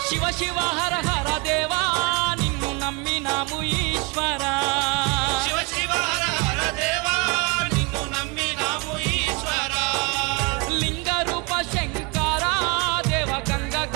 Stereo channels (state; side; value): quieter; left; 29.5 dB